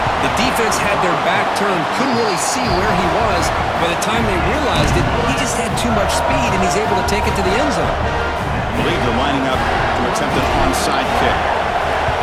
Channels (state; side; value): identical; both; correlation 1.00